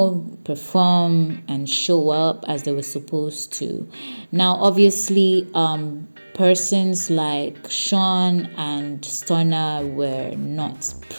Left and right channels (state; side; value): inverted; both; correlation -1.00